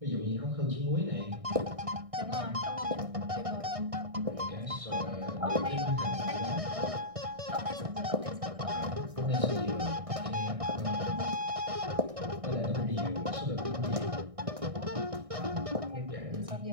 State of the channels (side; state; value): left; late; 1.6 ms